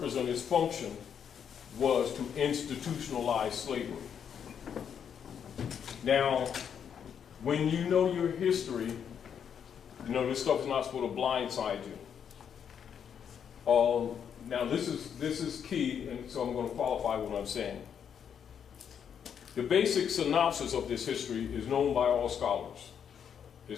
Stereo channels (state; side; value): quieter; right; 8.0 dB